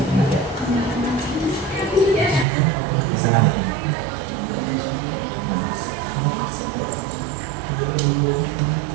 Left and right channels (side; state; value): left; drops out; at 2.5 s